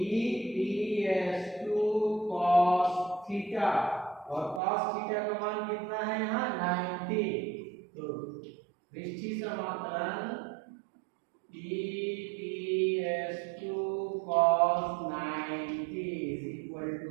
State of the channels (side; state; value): left; drops out; at 4.6 s